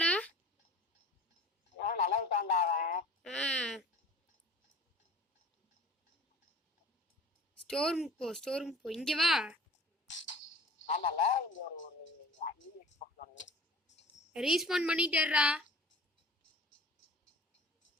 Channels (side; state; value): both; normal; correlation 0.43